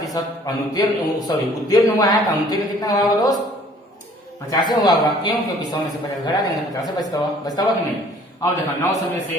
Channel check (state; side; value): normal; both; correlation 0.55